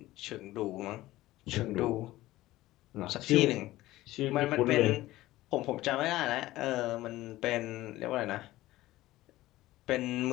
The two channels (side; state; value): right; quieter; 16.8 dB